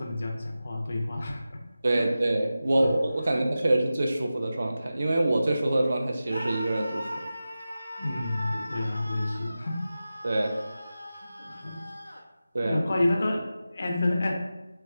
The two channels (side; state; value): both; inverted; correlation -0.94